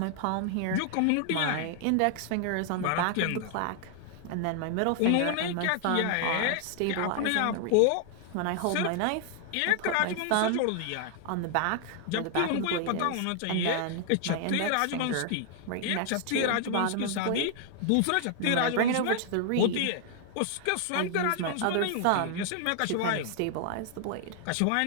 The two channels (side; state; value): both; different; correlation 0.00